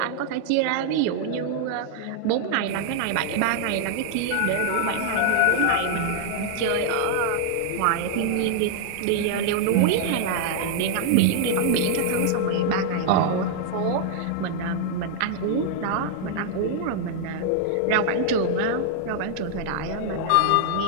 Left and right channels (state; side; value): different; both; correlation -0.01